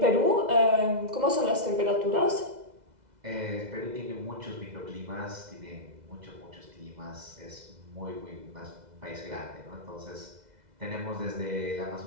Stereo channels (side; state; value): left; late; 2.0 ms